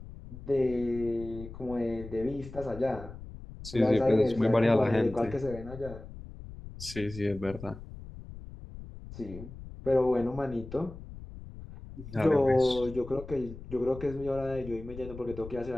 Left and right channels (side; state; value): left; noise; rumble, 14 dB below the sound